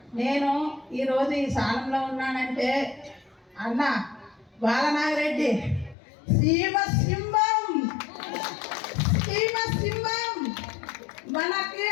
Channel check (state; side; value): drops out; right; at 6.0 s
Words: నేను ఈరోజు ఈ స్థానంలో ఉన్నానంటే అన్న బాలనాగిరెడ్డి సింహం మనకి